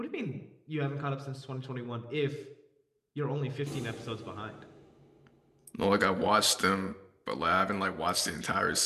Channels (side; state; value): both; identical; correlation 1.00